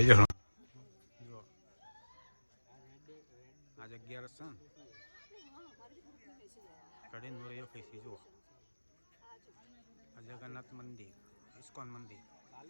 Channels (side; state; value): both; inverted; correlation -1.00